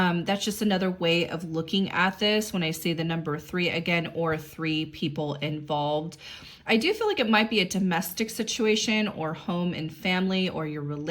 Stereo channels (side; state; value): both; identical; correlation 1.00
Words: just another way of looking at this when I say the number 3 again, or 3 people involved. I do feel like it might be a domestic situation, or home and family, or your